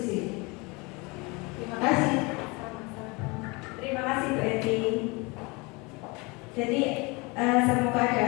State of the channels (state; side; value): quieter; right; 27.0 dB